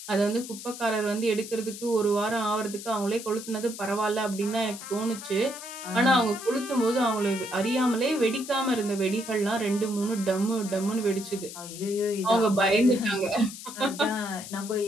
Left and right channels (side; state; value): left; noise; hiss, 12 dB below the sound